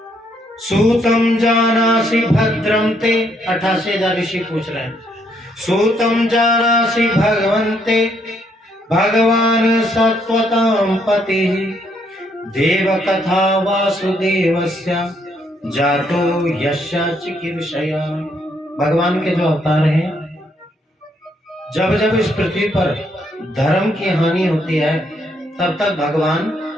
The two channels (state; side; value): normal; both; correlation 0.72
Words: सूतम जानासि भद्रम ते, 88,000 ऋषि पूछ रहे हैं। सूतम जानासि भगवन्ते भगवान सत्वतां पति देव कथा वासुदेवस्य जातो यस्य चिकीर्षया। भगवान के जो अवतार हैं, जब जब इस पृथ्वी पर धर्म की हानि होती है, तब तक भगवान